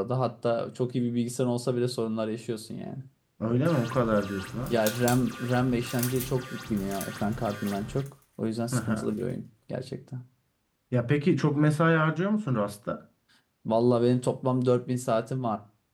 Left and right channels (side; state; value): both; identical; correlation 1.00